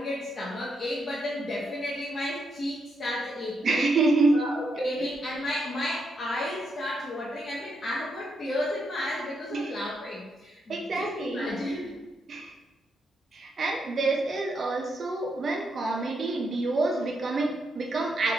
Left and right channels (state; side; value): normal; both; correlation 0.80